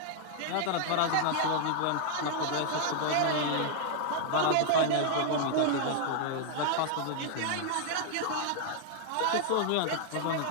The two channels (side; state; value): both; different; correlation 0.00